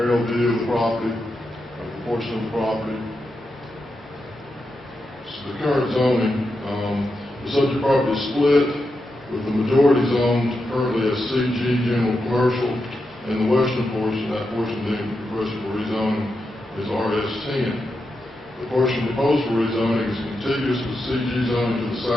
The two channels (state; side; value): normal; both; correlation 0.87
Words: view of the property, of the portion of the property. This is the current zoning. The subject property is split, with the majority zoned currently as CG General Commercial, and the western portion, that portion being requested for rezoning, is RS10. The portion proposed for rezoning is contiguous with CG zoning to the